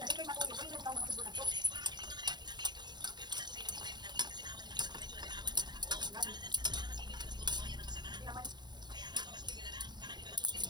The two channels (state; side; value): late; left; 0.21 ms